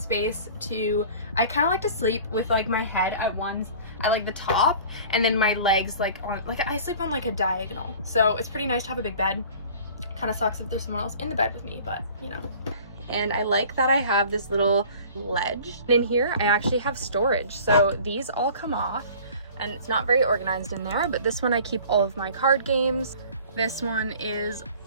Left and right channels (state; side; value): inverted; both; correlation -0.46